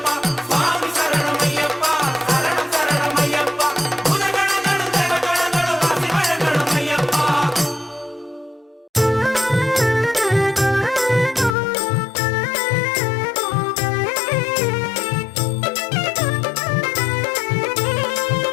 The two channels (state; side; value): drops out; right; at 11.6 s